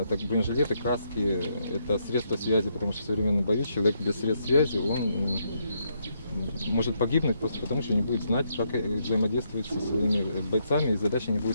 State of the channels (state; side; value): inverted; both; correlation -0.76